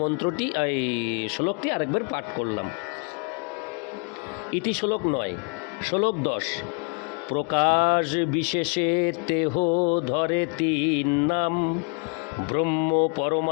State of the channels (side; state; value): right; quieter; 37.4 dB